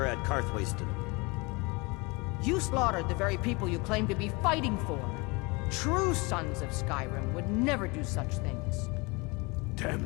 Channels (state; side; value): quieter; right; 26.9 dB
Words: at Karthwasten. You slaughtered the very people you claim to be fighting for. True sons of Skyrim would never do such things.